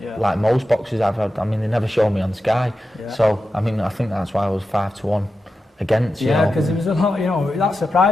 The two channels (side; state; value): both; normal; correlation 0.91